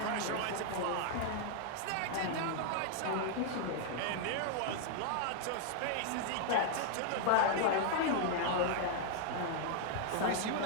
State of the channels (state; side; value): different; both; correlation 0.00